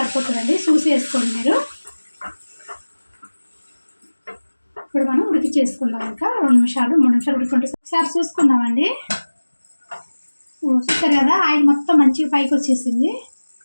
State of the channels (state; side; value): inverted; both; correlation -1.00